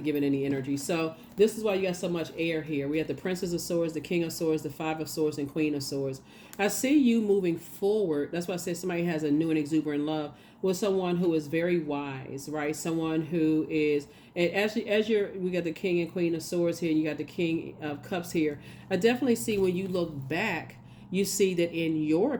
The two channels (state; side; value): identical; both; correlation 1.00